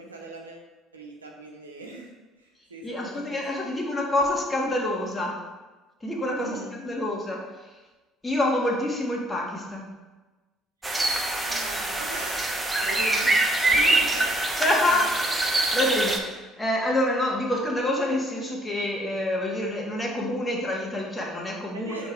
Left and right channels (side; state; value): both; normal; correlation 0.65